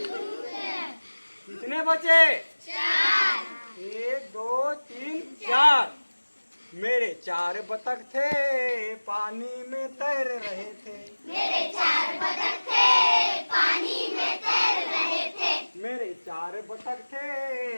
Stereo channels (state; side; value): inverted; both; correlation -1.00